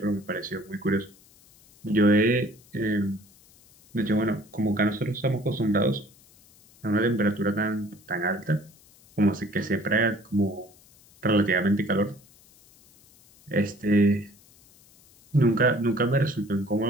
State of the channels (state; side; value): noise; left; hiss, 28 dB below the sound